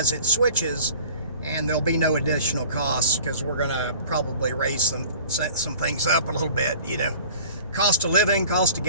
it switches, and there'll be no additional costs because we're going to probably raise some things up a little bit, cost of living, cost of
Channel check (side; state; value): both; inverted; correlation -0.46